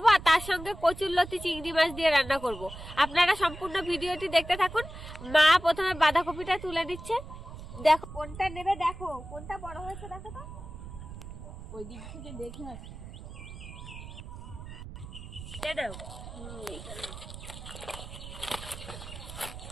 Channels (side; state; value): right; noise; rumble, 12 dB below the sound